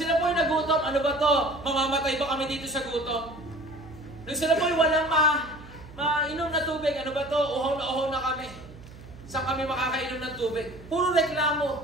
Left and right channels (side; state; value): right; noise; hum, 18 dB below the sound